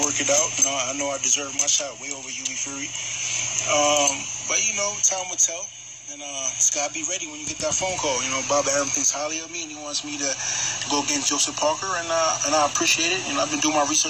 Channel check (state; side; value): identical; both; correlation 1.00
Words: work it out. You know, I know I deserve my shot way over Hughie Fury. But you know, time will tell. And just gotta be ready when you get that phone call. You know, Bob Arum thinks highly of me, and he wants me to go against Joseph Parker, and I appreciate it. You know, I've been doing my